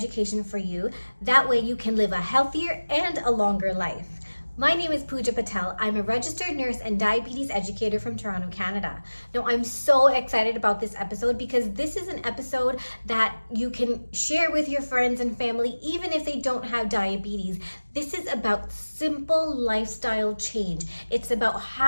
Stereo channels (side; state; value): both; inverted; correlation -1.00